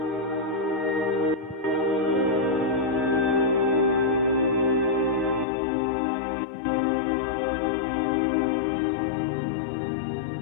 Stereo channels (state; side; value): drops out; right; at 5.5 s